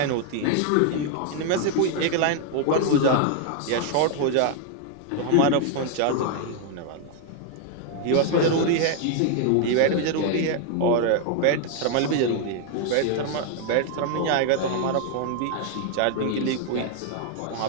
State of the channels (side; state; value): both; different; correlation 0.00